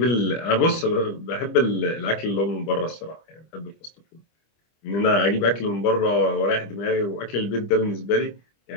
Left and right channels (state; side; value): late; right; 25 ms